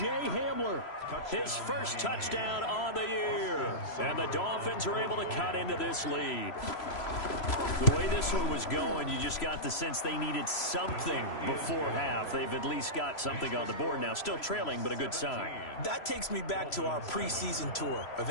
Hamler, his first touchdown on the year. And the Dolphins are able to cut into this lead. The way this one was going, you just got the sense they needed something before half. They've at least got something on the board now. Still trailing, but a good sign. That takes me back to our preseason tour of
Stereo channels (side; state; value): right; late; 3.0 ms